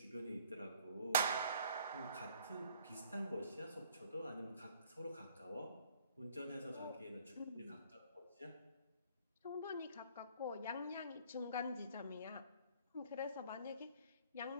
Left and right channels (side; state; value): both; inverted; correlation -0.58